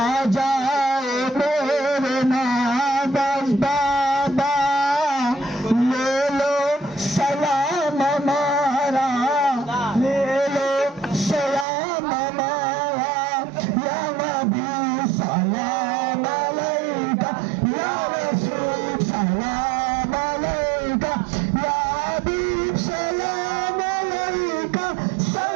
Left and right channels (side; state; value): left; drops out; at 11.7 s